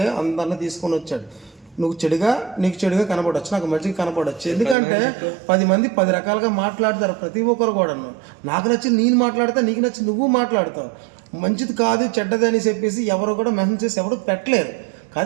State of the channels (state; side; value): drops out; left; at 4.8 s